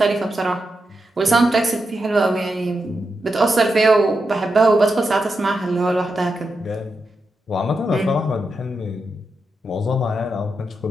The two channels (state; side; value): normal; both; correlation 0.87